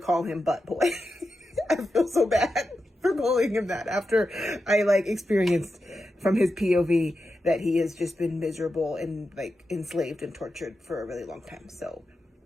him Butt Boy. I feel so bad for calling him that after I experienced from his POV that he has just been miserable and enslaved and tortured for a really long time. So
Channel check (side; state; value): both; normal; correlation 0.89